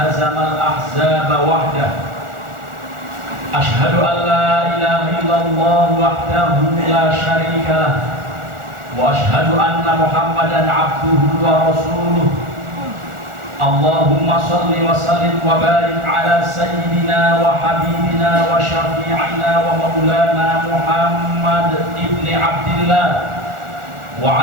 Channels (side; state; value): left; late; 1.4 ms